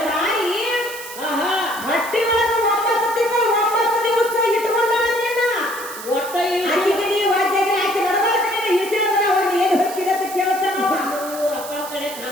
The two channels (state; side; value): noise; right; hiss, 12 dB below the sound